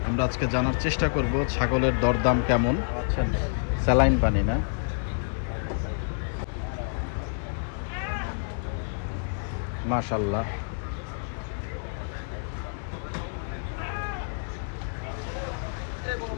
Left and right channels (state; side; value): silent; right; digital silence